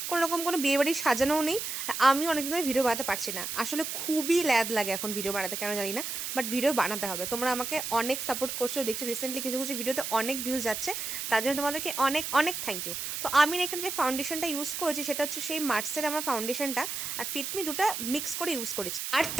কোনো রকম কোনো বিয়েবাড়ি সাজানোও নেই, আর আমি অনেকদিন ধরে ভিডিও বানাতে পারছি না। আসলে খুবই ল্যাদ লাগে এখন ভিডিও বানাতে, কেন জানি না, বাট ভিডিও বানাতে হবে। তোমরা আমাকে অনেক সাপোর্ট করছো, দেখছি রিসেন্টলি কিছু কিছু ভিডিওতে অনেক ভিউজ যাচ্ছে, তার জন্য তোমাদেরকে অনেক অনেক থ্যাংক ইউ। তো আমি এখানে যে ফাউন্ডেশনটা ইউজ করেছি সেটা হচ্ছে সেই মার্সের আমার ফাউন্ডেশনটা, আর ফিটমি দুটো মিক্স করে ইউজ করেছি। আর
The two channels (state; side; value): noise; right; hiss, 4 dB below the sound